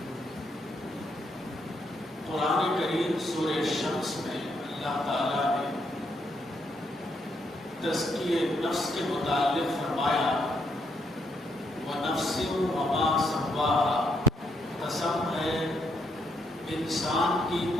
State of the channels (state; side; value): normal; both; correlation 0.75